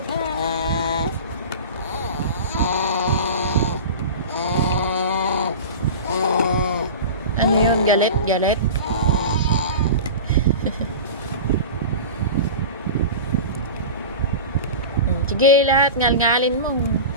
Ano yun? Galit? Galit? Sige, lahat. Ngal-ngalin mo.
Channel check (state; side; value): inverted; both; correlation -0.31